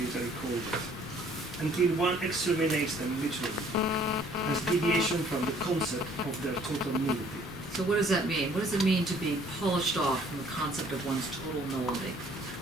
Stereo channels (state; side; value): normal; both; correlation 0.59